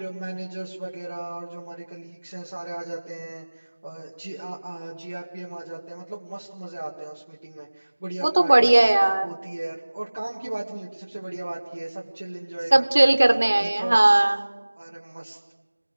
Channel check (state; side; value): inverted; both; correlation -1.00